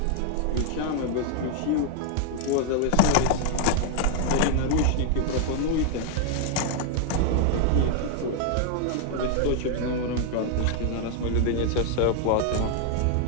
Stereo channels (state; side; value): different; both; correlation 0.01